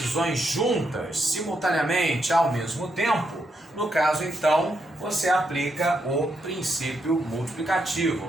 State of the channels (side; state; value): both; normal; correlation 0.80